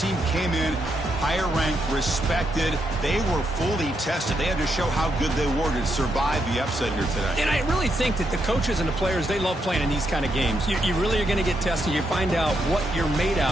team came in higher ranked, respected. They were fully tested. They had to show how good they were to survive the upset here today. And I really think that the coaches and the players, they love playing in these kind of games. You really are going to get tested. You find out what you're made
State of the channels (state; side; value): normal; both; correlation 0.80